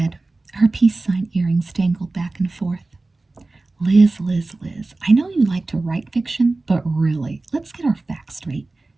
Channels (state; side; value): quieter; left; 3.2 dB